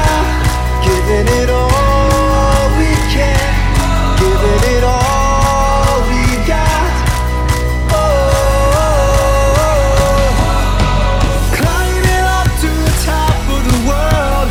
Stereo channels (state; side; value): identical; both; correlation 1.00